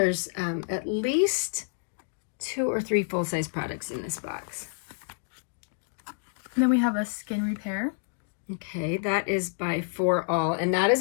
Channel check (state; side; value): silent; right; digital silence